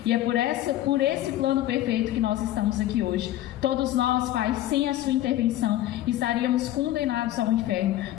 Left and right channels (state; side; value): quieter; right; 14.1 dB